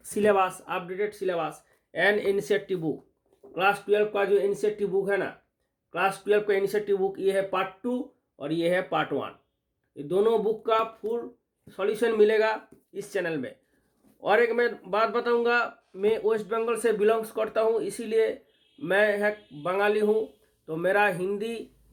syllabus, updated syllabus and NCERT book. Class 12 का जो NCERT बुक है ना, क्लास 12 का NCERT बुक ये है पार्ट 2 और ये है पार्ट 1। ये दोनों बुक का फुल सॉल्यूशन मिलेगा इस चैनल में। और एक मैं बात बताऊंगा, मैं वेस्ट बंगाल से बिलोंग्स करता हूँ, इसीलिए मैं एक बंगाली हूँ, तो मेरा हिंदी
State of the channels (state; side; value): identical; both; correlation 1.00